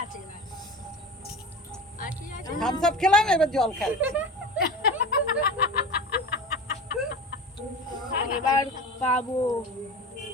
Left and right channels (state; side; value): normal; both; correlation 0.32